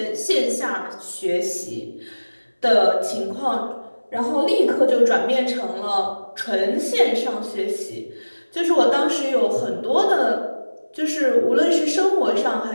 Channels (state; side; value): inverted; both; correlation -1.00